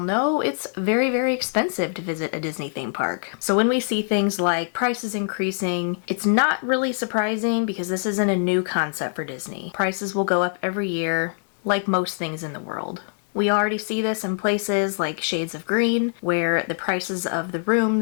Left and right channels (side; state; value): right; silent; digital silence